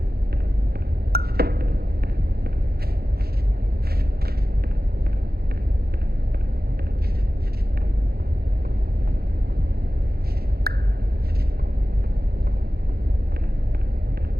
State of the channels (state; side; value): late; left; 0.45 ms